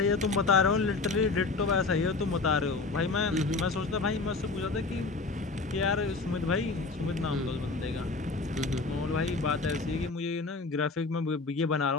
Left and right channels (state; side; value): quieter; right; 3.8 dB